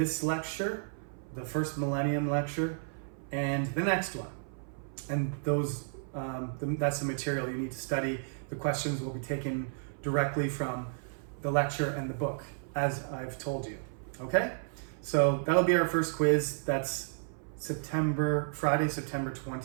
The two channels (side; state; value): left; silent; 56 dB below the other